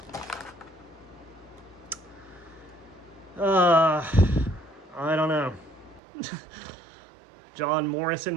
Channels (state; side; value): drops out; left; at 6.0 s